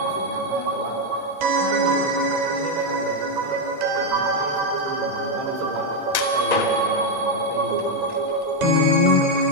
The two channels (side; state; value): left; late; 1.9 ms